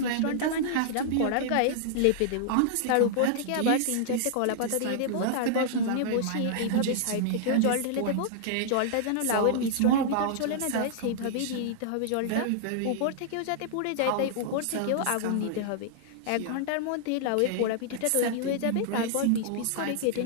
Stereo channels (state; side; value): different; both; correlation -0.01